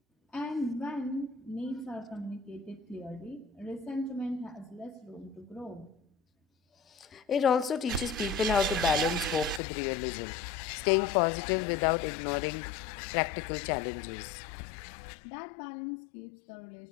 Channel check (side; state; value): right; drops out; at 9.6 s